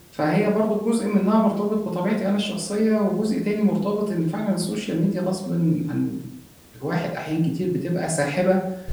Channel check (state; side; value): identical; both; correlation 1.00